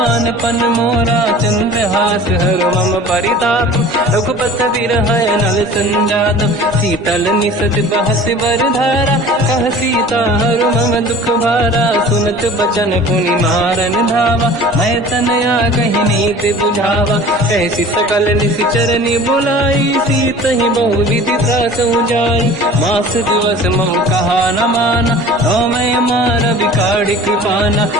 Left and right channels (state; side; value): normal; both; correlation 0.43